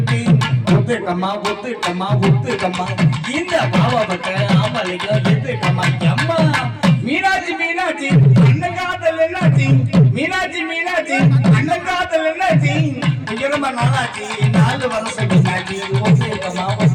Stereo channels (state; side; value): identical; both; correlation 1.00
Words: ஒத்துக்கம்மா ஒத்துக்கம்மா ஒத்துக்கம்மா இந்த பாவப்பட்ட ஆம்பளைக்கு எத்துக்கம்மா அம்மா மீனாட்சி மீனாட்சி அண்ணன் காதல் என்னாச்சு மீனாட்சி மீனாட்சி அண்ணன் காதல் என்னாச்சு இங்க ரொம்ப நாளாச்சு 4 வருஷம் மீனாட்சி ஒத்துக்கம்மா